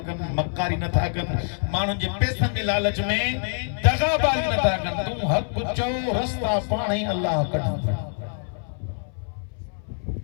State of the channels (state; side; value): silent; right; 60 dB below the other